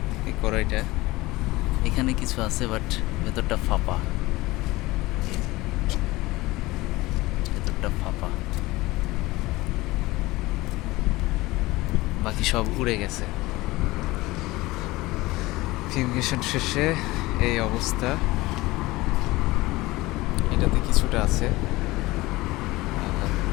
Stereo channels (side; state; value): right; quieter; 20.0 dB